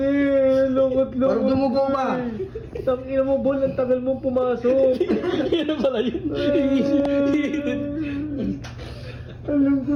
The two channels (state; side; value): identical; both; correlation 1.00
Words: Lungkot-lungkot. Parang dumugo ba? Tangina mo, Bol. Ang tagal mong pumasok. Yan pala yun. Ang